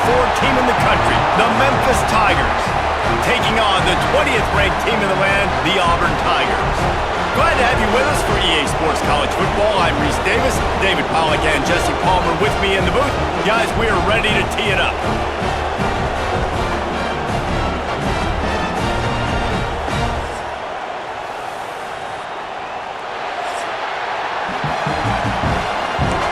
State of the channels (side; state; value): both; identical; correlation 1.00